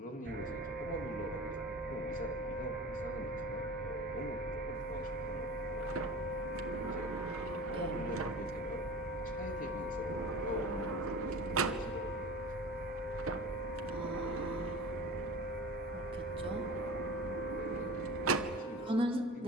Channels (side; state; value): both; normal; correlation 0.36